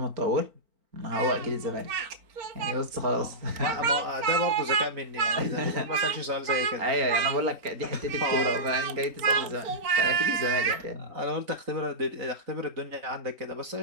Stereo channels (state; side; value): late; left; 3.9 ms